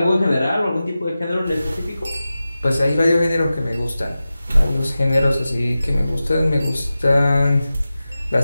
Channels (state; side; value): inverted; both; correlation -0.94